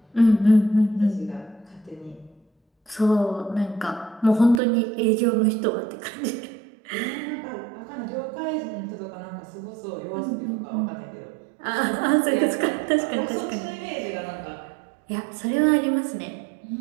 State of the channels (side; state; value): left; drops out; at 4.6 s